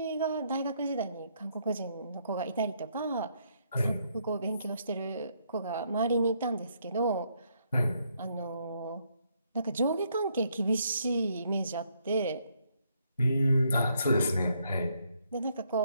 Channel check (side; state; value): both; inverted; correlation -0.72